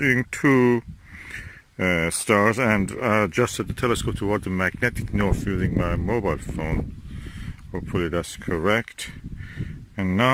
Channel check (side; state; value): both; identical; correlation 1.00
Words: 2 stars and adjusted the telescope toward the magnetic north using my mobile phone. Hopefully that's correct. And